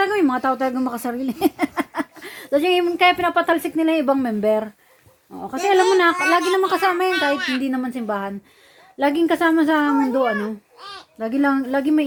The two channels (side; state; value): both; identical; correlation 1.00